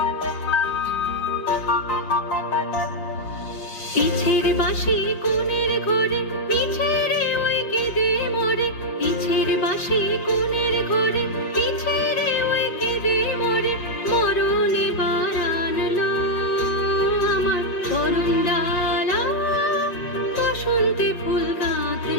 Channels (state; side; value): late; right; 5.6 ms